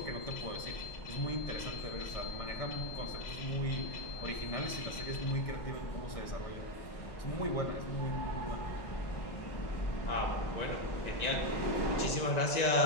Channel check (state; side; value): late; right; 1.9 ms